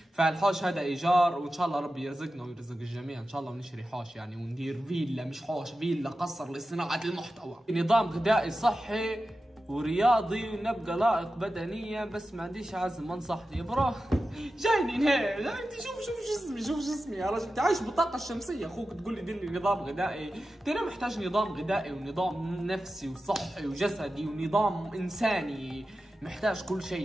فالحوش هذا ايجار، وان شاء الله ربي يرزقنا ويرزق الجميع ان شاء الله، ونشتري حوش يعني وندير فيلا، مش حوش، فيلا قصر لصناعة المحتوى. نظام غذائي صحي ورياضي ونبقى لائق بدنيا، بس ما عنديش عزم. انصحني برو. جايني هيك، انت شوف جسمي يا رجل، انت عايش بالطاقة الشمسية، اخوك تقول لي دير لي نظام غذائي، انت انا محتاج نظام غذائي ونظام نفسي وصحي وجسدي ونظام انساني، محتاج كل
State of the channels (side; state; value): both; normal; correlation 0.93